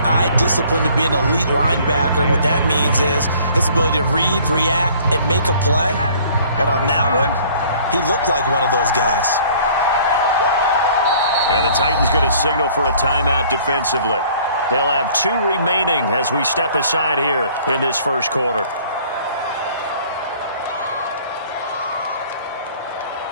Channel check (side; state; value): both; inverted; correlation -0.55